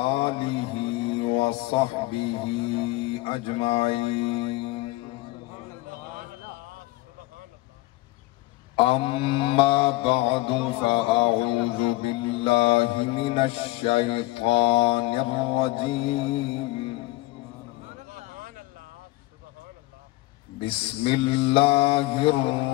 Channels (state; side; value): quieter; right; 19.1 dB